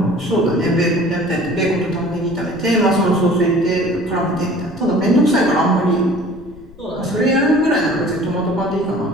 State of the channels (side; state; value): left; noise; rumble, 23 dB below the sound